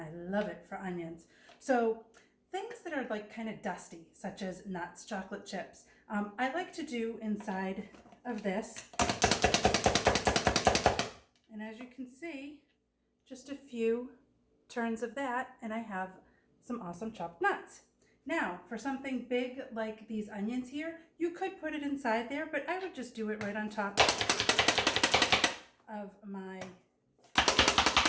love it for onions. So things that are like kind of dusty, such as nuts, chocolate chips, I like to do inside of this. And as you can see, just a few turns of that, and I have some awesome chopped nuts. Now, for something big like these onions here, you could put it inside there, but I would just do it right on top of my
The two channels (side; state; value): both; identical; correlation 1.00